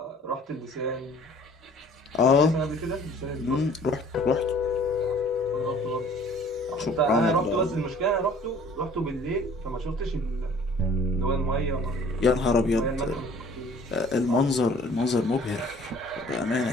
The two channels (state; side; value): normal; both; correlation 0.52